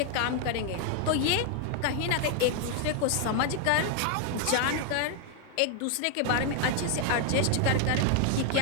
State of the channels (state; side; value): different; both; correlation 0.00